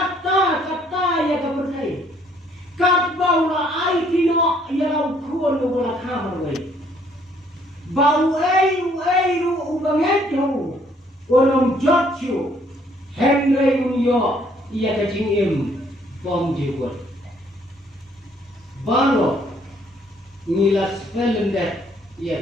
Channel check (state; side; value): normal; both; correlation 0.64